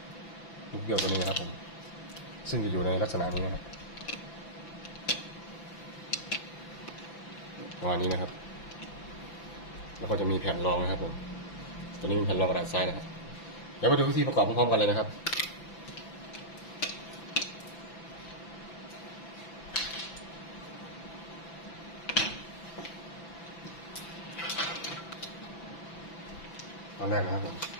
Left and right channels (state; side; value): late; right; 5.9 ms